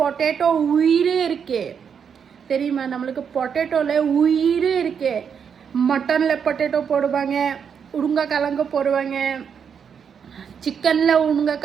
உயிரே இருக்கு தெரியுமா? நம்மளுக்கு பொட்டேட்டோல உயிரே இருக்கு. மட்டன்ல பொட்டேட்டோ போடுவாங்க, உருளைக்கிழங்கு போடுவாங்க, சிக்கன்ல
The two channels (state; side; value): quieter; left; 7.1 dB